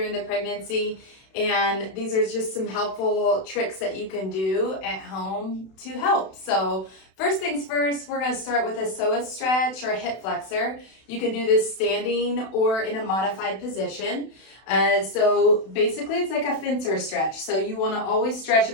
the pregnancy, and these are just some helpful tricks that you can do at home to help. So first things first, we're going to start with a psoas stretch or a hip flexor. You can do this standing or in a modified position. So basically it's like a fencer stretch. So you want to always stretch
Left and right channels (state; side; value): late; right; 32 ms